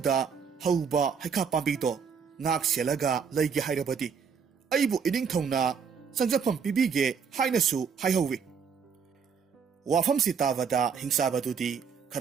ꯍꯧꯕ ꯍꯩꯈꯥ ꯄꯥꯝꯕꯤꯗꯣ ꯉꯥꯛ ꯁꯦꯜꯂꯒ ꯂꯩꯒꯦ ꯍꯥꯏꯔꯕꯗꯤ ꯑꯩꯕꯨ ꯏꯅꯤꯡꯊꯧꯅ ꯆꯪꯖꯐꯝ ꯄꯤꯕꯤꯒꯦ ꯍꯥꯏꯅꯁꯨ ꯍꯥꯏꯍꯧꯋꯤ"꯫ ꯋꯥꯐꯝꯁꯤ ꯇꯥꯕꯗ ꯍꯤꯡꯆꯥꯕꯗꯨꯗꯤ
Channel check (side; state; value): left; quieter; 6.4 dB